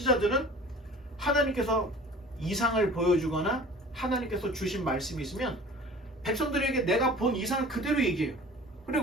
하나님께서 이상을 보여주거나 하나님께서 주신 말씀이 있으면 백성들에게 내가 본 이상을 그대로 얘기해요.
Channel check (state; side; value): normal; both; correlation 0.43